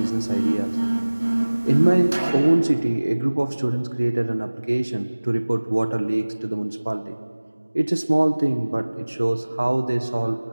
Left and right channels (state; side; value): inverted; both; correlation -1.00